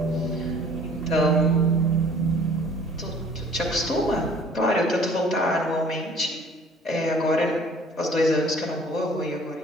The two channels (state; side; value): normal; both; correlation 0.53